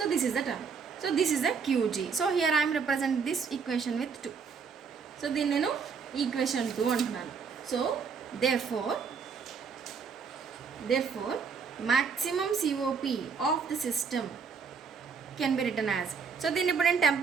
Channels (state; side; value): quieter; left; 5.8 dB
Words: this is the term. So this is the QG. So here I'm represent this equation with 2. సో దీన్ని నేను ఈక్వేషన్ 2 అంటున్నాను. So therefore maximum COP of the system can be written as. So దీన్ని ఇప్పుడు నేను